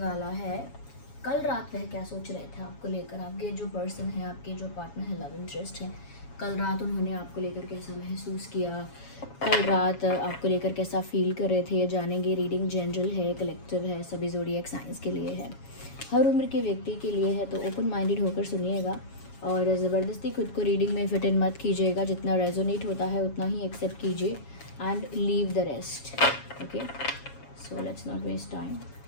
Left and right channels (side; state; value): right; late; 7.2 ms